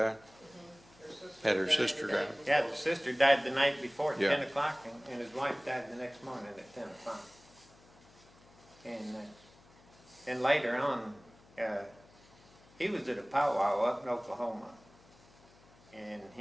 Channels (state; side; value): noise; left; hum, 26 dB below the sound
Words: Had her sister died? yeah, the sister died the night before at Yeah. 10 o'clock, and his wife died the next morning at 10 o'clock. And later on, he was at a powwow up in Oklahoma, and